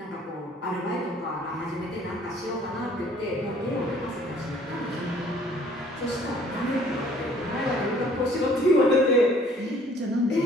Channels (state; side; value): normal; both; correlation 0.57